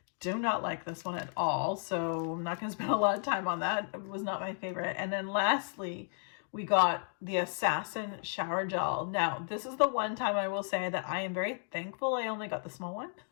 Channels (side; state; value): right; silent; 55 dB below the other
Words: do not like this one at all. So I'm not going to spend a lot of time on that. It was not my favorite. And then lastly, we got the Assassin shower gel. Now, this is the one time I will say that I am very thankful I only got the small one.